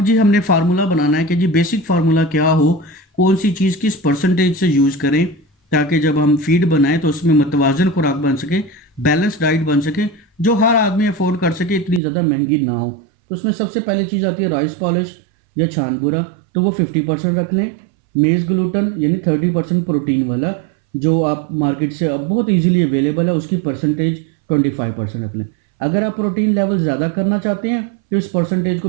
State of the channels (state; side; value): drops out; left; at 12.0 s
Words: जी हमने फार्मूला बनाना है कि जी बेसिक फार्मूला क्या हो, कौन सी चीज़ किस परसेंटेज से यूज़ करें, ताकि जब हम फीड बनाएं तो उसमें मतवाजन खुराक बन सके, बैलेंस डाइट बन सके, जो हर आदमी अफोर्ड कर सके, इतनी ज़्यादा महंगी ना हो। तो उसमें सबसे पहले चीज़ आती है राइस पॉलिश या छानबूरा, तो वो 50% रख लें। मेज़ ग्लूटन यानी 30% प्रोटीन वाला, जो आप मार्केट से अब बहुत इजीली अवेलेबल है, उसकी परसेंटेज 25% रख लें। अगर आप प्रोटीन लेवल ज़्यादा करना चाहते हैं तो इस परसेंटेज